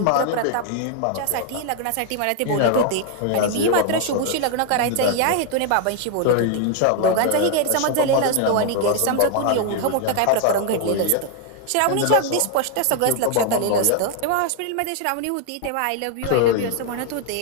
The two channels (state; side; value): different; both; correlation 0.00